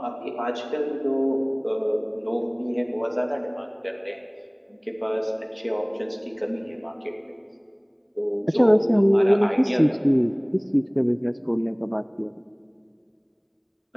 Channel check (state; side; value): identical; both; correlation 1.00